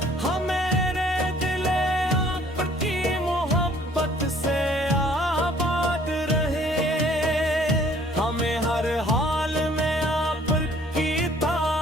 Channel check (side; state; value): both; normal; correlation 0.58